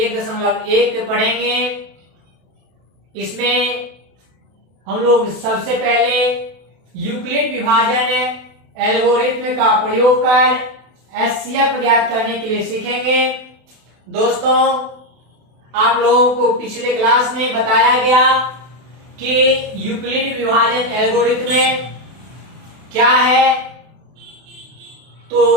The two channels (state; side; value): late; left; 32 ms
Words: पढ़ेंगे। इसमें हम लोग सबसे पहले यूक्लिड विभाजन एल्गोरिथ्म का प्रयोग कर एचसीएफ ज्ञात करने के लिए सीखेंगे। दोस्तों, आप लोगों को पिछले क्लास में बताया गया कि यूक्लिड विभाजन एल्गोरिथ्म क्या है, तो